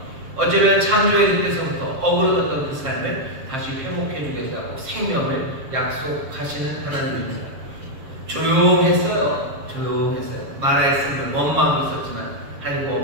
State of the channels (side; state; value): left; late; 7.5 ms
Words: 어쩌면 창조의 그때서부터 어그러졌던 그 삶을 다시 회복해 주겠다고 생명을 약속하시는 하나님입니다. 조용했어요. 조용했어요. 말했으면 원망하고 있었지만 하나님